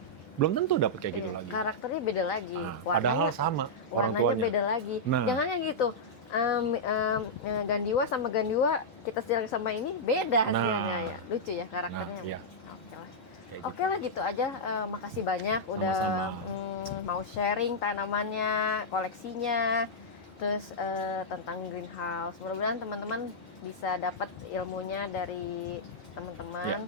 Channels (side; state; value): both; normal; correlation -0.08